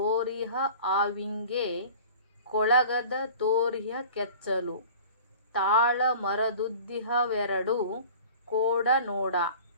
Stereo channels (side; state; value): both; inverted; correlation -0.43